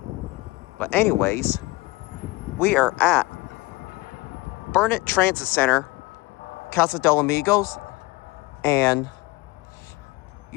But anyways, we are at Burnett Transit Center, Casa del Amigos, and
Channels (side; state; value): right; quieter; 22.0 dB